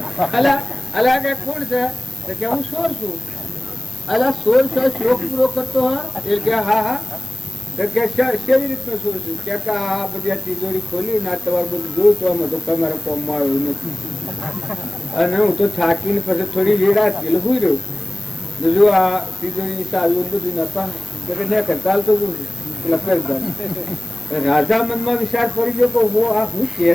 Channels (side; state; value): left; noise; hiss, 18 dB below the sound